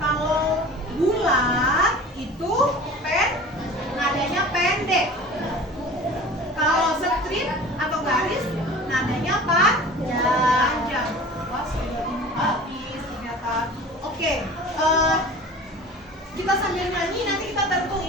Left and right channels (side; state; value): both; normal; correlation 0.40